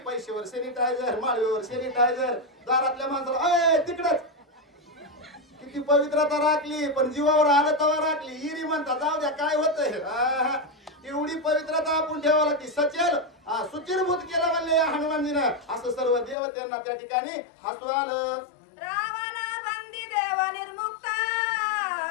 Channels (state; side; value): drops out; right; at 16.4 s